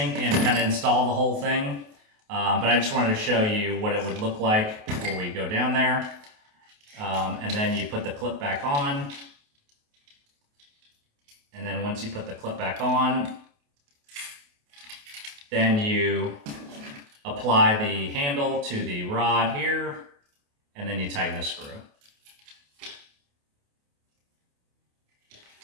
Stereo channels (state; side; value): late; left; 28 ms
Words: and kind of install the whole thing. But I just wanted to show you what it would look like before we go down there. And then you put the clip back on. And then once you put the clip back on, then you apply the handle to the rod here, and then you tighten the screw.